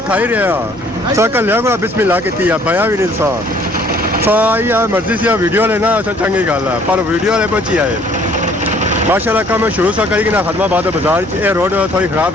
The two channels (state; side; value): noise; left; rumble, 26 dB below the sound